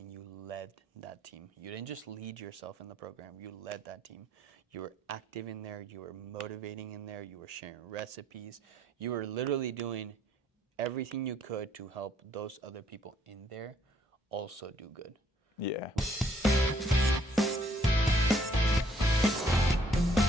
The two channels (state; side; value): normal; both; correlation 0.66